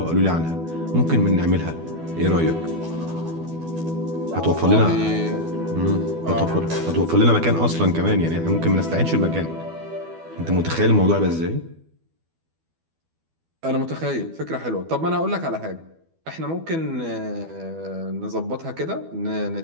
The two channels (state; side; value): late; left; 12 ms